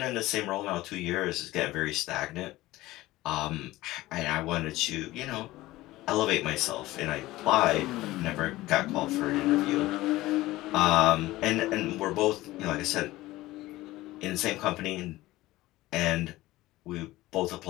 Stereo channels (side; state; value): right; quieter; 17.7 dB